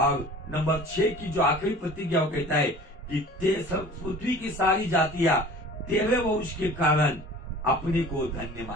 नंबर 6 की जो आखिरी प्रतिज्ञा कहता है कि पृथ्वी की सारी जातियां तेरे वंश के कारण अपने को धन्य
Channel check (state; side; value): normal; both; correlation 0.43